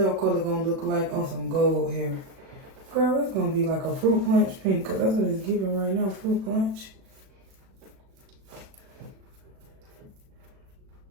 color gonna look like on some gold hair. Girl, it's gonna be like a fruit punch pink, cause that's what it's giving right now, fruit punch.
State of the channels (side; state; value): left; late; 36 ms